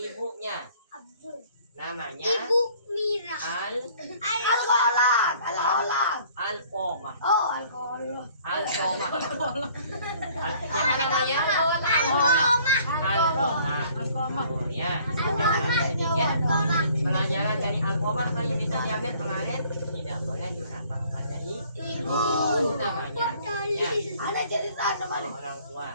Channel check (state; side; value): inverted; both; correlation -0.57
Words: Namanya Ibu Mira. Alfomah. Alkohol. Alfomah. Siapa namanya? Alfomah. Oh, ya. Sedikit pelajaran dari Alfomah yang bisa diambil kemarin, tidak boleh durhaka kepada ibu. Namanya ya. Orang